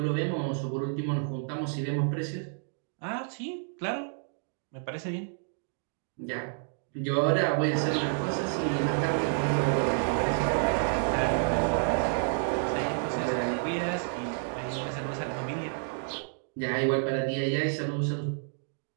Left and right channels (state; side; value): silent; left; digital silence